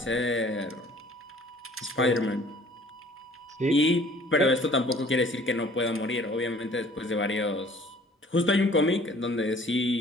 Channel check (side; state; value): both; normal; correlation 0.53